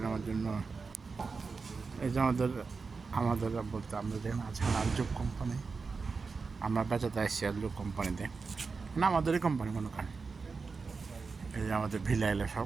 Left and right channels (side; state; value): left; quieter; 4.7 dB